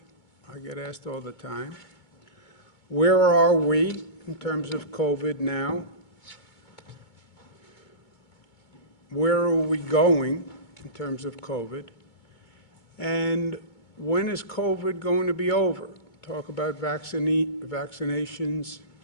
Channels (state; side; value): late; right; 2.2 ms